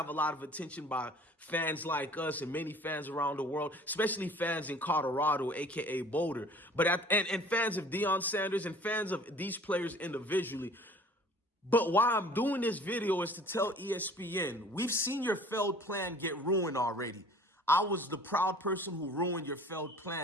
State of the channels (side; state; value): both; normal; correlation 0.49